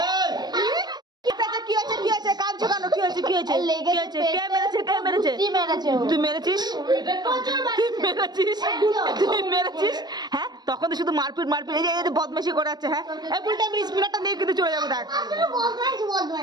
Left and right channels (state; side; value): late; left; 0.20 ms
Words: কি আছে কি আছে কাঁদছো কেন কি হয়েছে কি হয়েছে কি হয়েছে কে মেরেছে কে মেরেছে তুই মেরেছিস তুই মেরেছিস হ্যাঁ তখন তো শুধু মারপিট মারপিট এই যে বদমাশি করে যাচ্ছে হ্যাঁ এই বুলটা আমি স্পিনারটা নিয়ে কিন্তু চলে যাবো দেখ